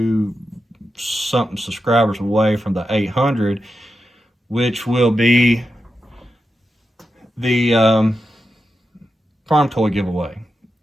something subscribers away from the 800, which will be the farm toy giveaway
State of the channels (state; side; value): normal; both; correlation 0.89